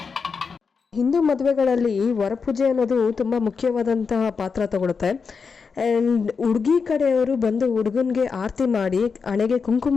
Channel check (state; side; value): quieter; right; 5.4 dB